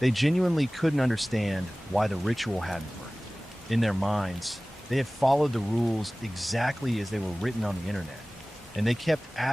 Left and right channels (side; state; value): both; normal; correlation 0.98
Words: genuinely couldn't understand why the ritual hadn't worked. In their minds, they had followed the rules exactly as they were written on the internet, and they kept